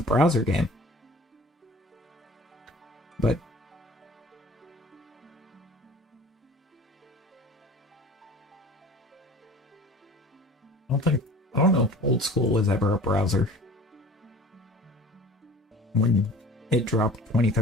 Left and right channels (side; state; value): both; normal; correlation 0.45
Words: browser game. But I don't know if old school was ever a browser. When it dropped